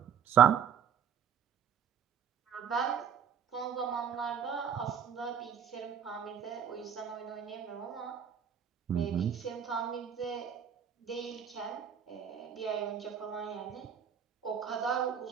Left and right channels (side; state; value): left; quieter; 8.0 dB